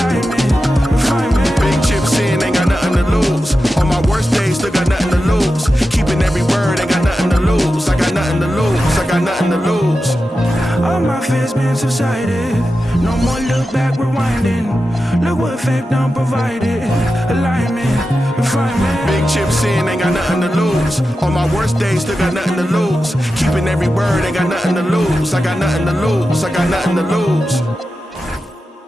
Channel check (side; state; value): both; normal; correlation 0.91